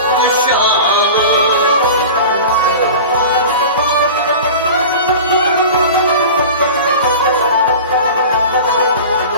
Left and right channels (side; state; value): both; inverted; correlation -0.34